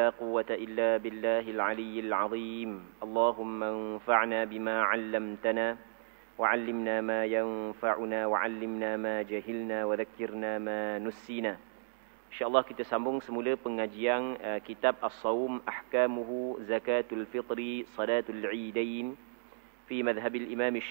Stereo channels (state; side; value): silent; left; digital silence